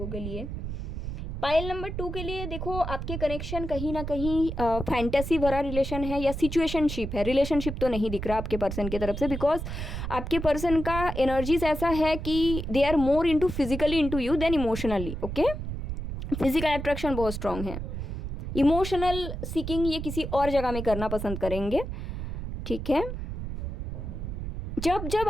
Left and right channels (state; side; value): noise; right; rumble, 5 dB below the sound